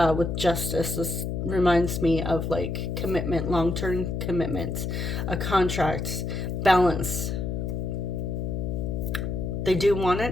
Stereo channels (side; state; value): left; noise; hum, 2 dB below the sound